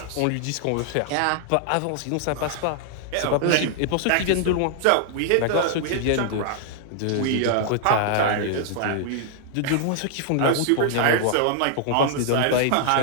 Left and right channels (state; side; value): different; both; correlation -0.01